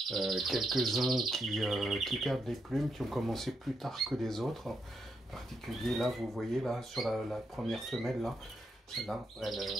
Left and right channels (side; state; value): both; normal; correlation 0.80